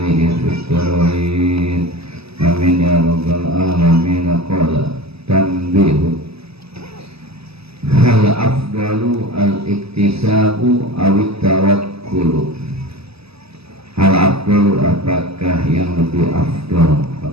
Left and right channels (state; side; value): late; left; 0.78 ms